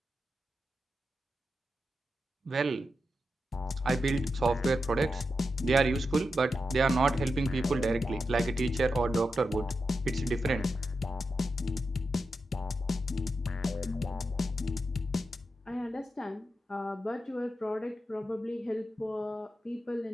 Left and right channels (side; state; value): both; normal; correlation 0.88